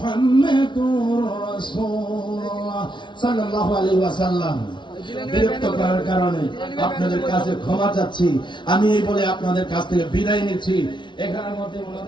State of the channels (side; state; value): right; late; 0.23 ms